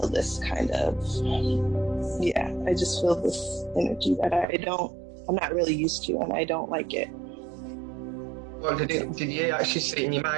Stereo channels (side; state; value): left; drops out; at 4.5 s